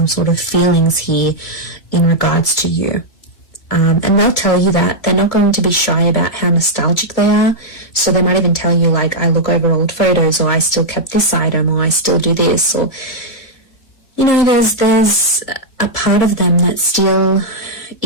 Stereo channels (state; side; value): late; right; 2.3 ms